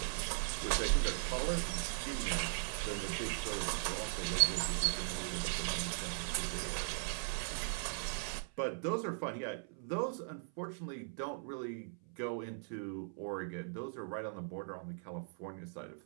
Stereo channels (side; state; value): left; silent; 52 dB below the other